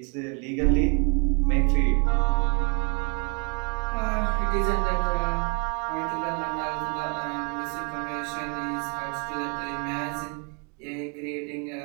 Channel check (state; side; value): quieter; left; 36.2 dB